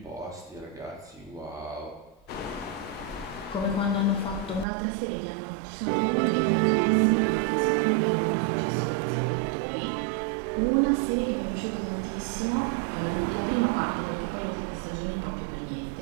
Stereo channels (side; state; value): left; drops out; at 4.7 s